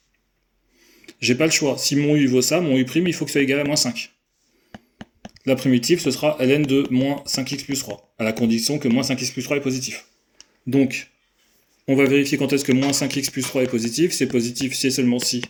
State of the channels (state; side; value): identical; both; correlation 1.00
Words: J'ai pas le choix. Si mon U vaut ça, mon U', il faut que ce soit égal à moins 5. La primitive, ce sera ln de moins 5x plus 3, à la condition que moins 5x plus 3 est positif. Donc, on va vérifier quand est-ce que moins 5x plus 3 est positif. C'est positif si et seulement si